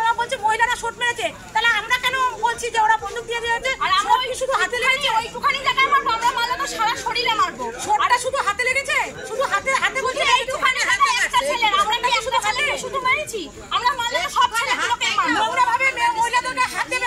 বলছে মহিলারা শট মেরেছে, তাহলে আমরা কেন বলছি যে ওরা বন্দুক দিয়ে দিয়েছে? আর আমরা শুধু হাতে লেগেছে, ওইটুখানি জায়গায় মারবো, আমরা মারলে তো সারা শরীরে মারবো। শটটা শুধু হাতে লেগেছে, শুধু হাতে বলছে এইটুখানি জায়গায় একটা ছেলে, আমরা কি শুধু হাতে শুধু মেরেছি? আমরা মারলে সব ছেলেগুলোকে মারবো। নোংরা ভাবে মহিলাদেরকে হাত দেবে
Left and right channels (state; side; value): identical; both; correlation 1.00